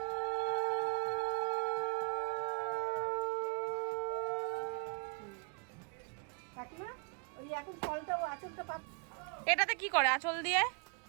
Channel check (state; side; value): quieter; left; 36.1 dB